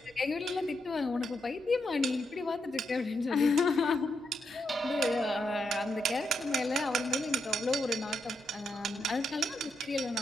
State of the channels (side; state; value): both; normal; correlation 0.82